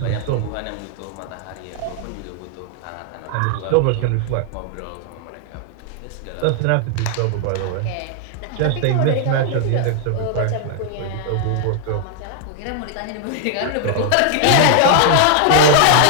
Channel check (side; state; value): both; different; correlation 0.00